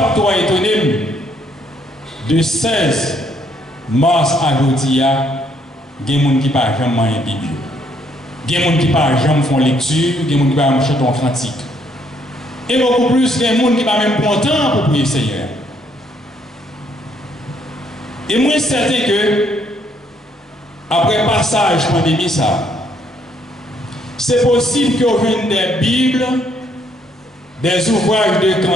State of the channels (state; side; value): normal; both; correlation 0.69